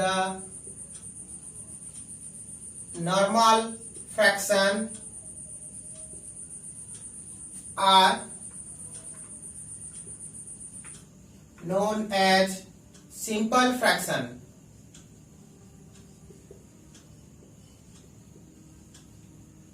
fraction are known as simple fraction.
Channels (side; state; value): both; identical; correlation 1.00